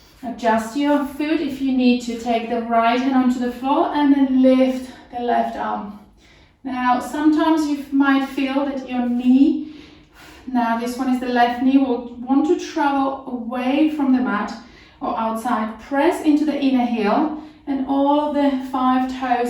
Adjust your foot if you need to. Take the right hand onto the floor and then lift the left arm. Now sometimes you might feel that your knee, now this one is the left knee, will want to travel away from the mat or outside. Press into the inner heel and all of the 5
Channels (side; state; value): both; identical; correlation 1.00